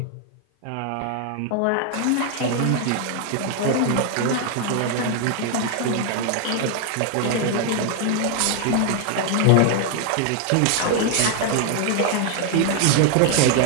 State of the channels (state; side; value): different; both; correlation 0.00